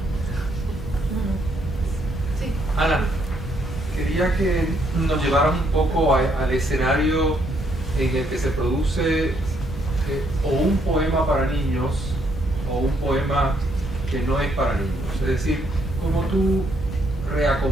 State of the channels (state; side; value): normal; both; correlation 0.72